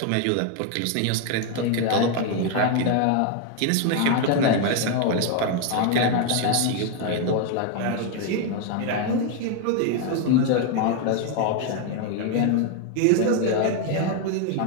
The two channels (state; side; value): different; both; correlation 0.01